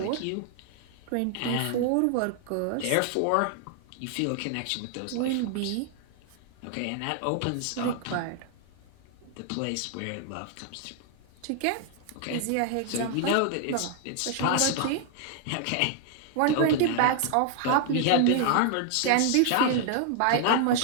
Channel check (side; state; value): both; different; correlation 0.00